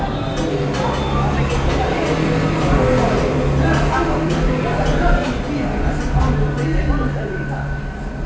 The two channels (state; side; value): identical; both; correlation 1.00